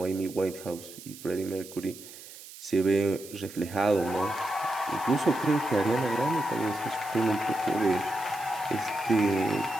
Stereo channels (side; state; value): right; noise; hiss, 16 dB below the sound